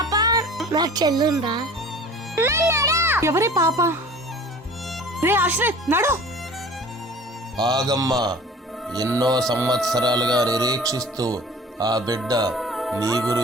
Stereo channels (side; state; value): both; normal; correlation 0.44